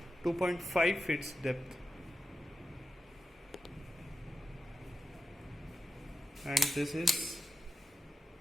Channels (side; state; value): both; normal; correlation 0.89